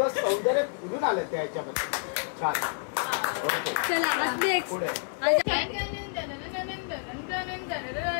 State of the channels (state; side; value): silent; right; 59 dB below the other